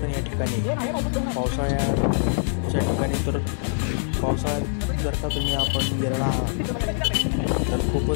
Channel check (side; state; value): right; silent; digital silence